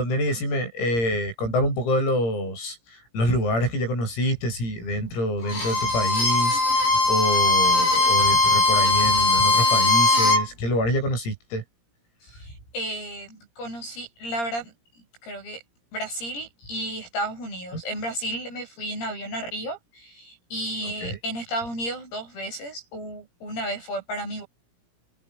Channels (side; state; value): right; late; 17 ms